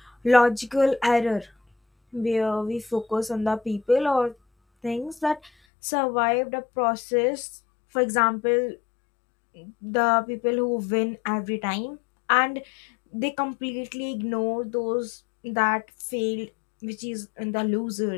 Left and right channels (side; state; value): right; drops out; at 5.5 s